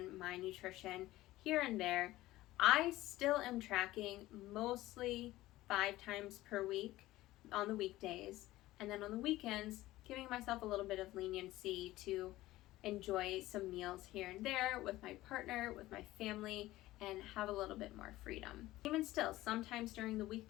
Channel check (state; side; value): quieter; right; 16.8 dB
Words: my nutrition here and there. I still am tracking mostly 5 times per week on the weekdays, and then on the weekends, giving myself a little bit of leniency to enjoy some meals here and there with my partner, with my family, and have a little bit more freedom. Even still, sometimes during the